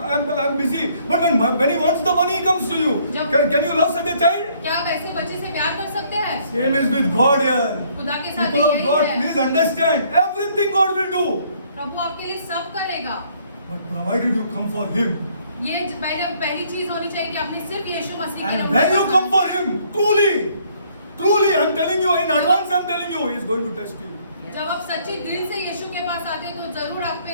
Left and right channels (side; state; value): both; inverted; correlation -0.64